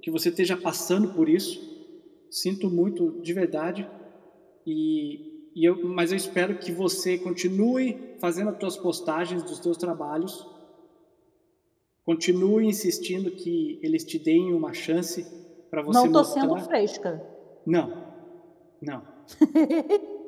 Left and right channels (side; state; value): both; identical; correlation 1.00